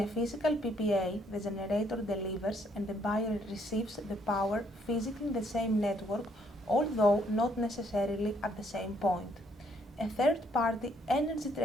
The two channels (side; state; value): both; normal; correlation 0.69